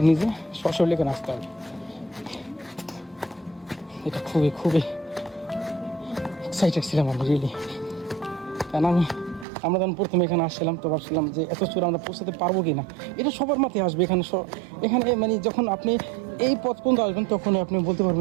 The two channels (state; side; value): drops out; left; at 9.5 s